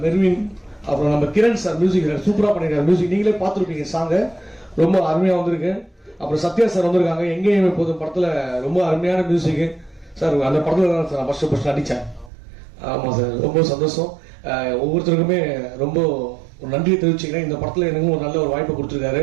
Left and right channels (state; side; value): drops out; left; at 12.3 s